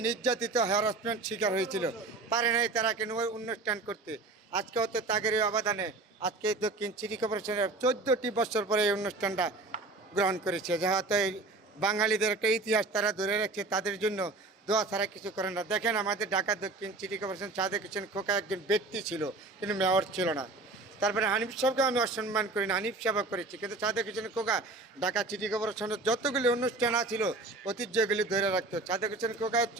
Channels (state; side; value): quieter; left; 3.2 dB